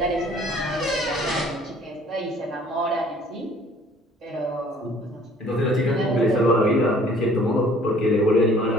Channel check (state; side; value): normal; both; correlation 0.55